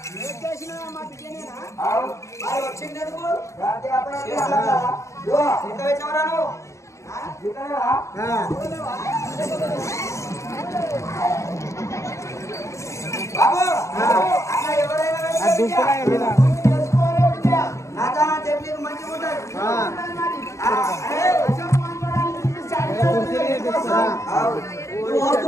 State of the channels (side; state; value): right; late; 0.14 ms